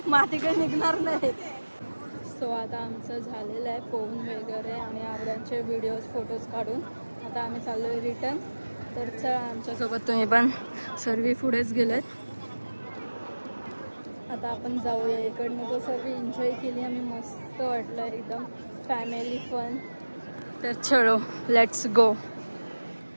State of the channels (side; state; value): both; inverted; correlation -1.00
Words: माती काही निघणार नाही. सो आता आमचं झालेलं आहे पोहून वगैरे आणि आवड्यांचे व्हिडिओज फोटोज काढून आता आम्ही चाललो आहे रिटर्न. तर चला आमच्यासोबत तुम्ही पण. सर्व पुढेच गेलेत. आता आपण जाऊया इकडनं. तो सर्व एन्जॉय केली आम्ही, मस्त वाटलं एकदम फॅमिली फन. तर चलो लेट्स गो.